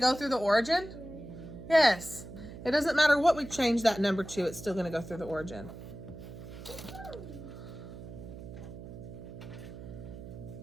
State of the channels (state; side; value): noise; right; hum, 12 dB below the sound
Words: through the origin? Yes. It doesn't matter what we change that number to, it's still going to go through the origin.